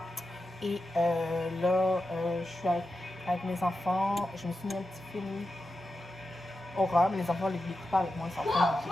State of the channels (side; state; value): both; normal; correlation 0.90